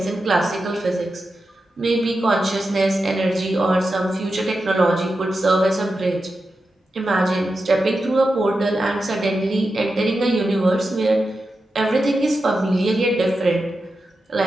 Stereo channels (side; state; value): both; normal; correlation 0.90